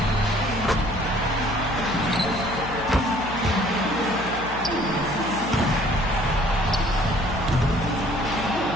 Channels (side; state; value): left; noise; hum, 13 dB below the sound